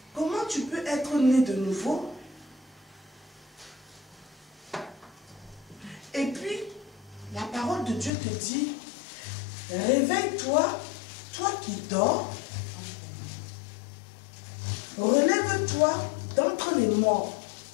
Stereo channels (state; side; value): drops out; right; at 8.1 s